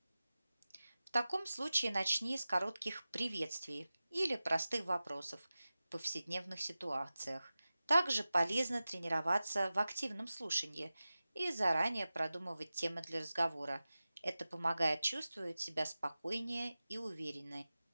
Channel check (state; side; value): inverted; both; correlation -0.96